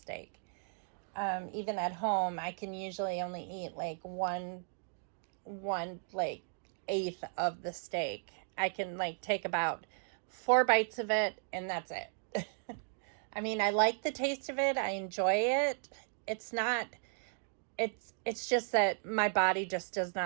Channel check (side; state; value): left; silent; digital silence